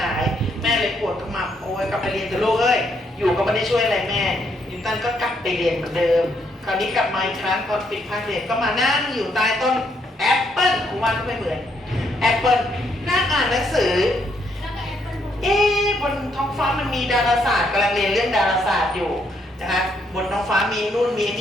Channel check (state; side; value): normal; both; correlation 0.73